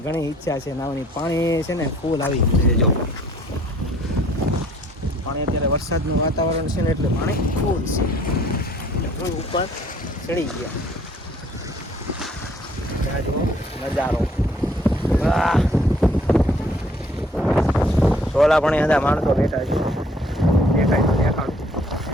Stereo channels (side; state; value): both; normal; correlation 0.59